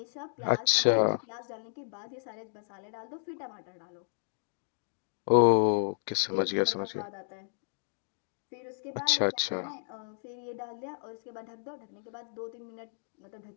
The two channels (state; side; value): silent; right; digital silence